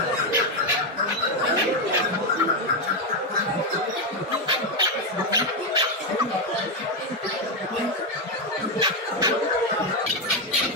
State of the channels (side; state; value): both; normal; correlation 0.06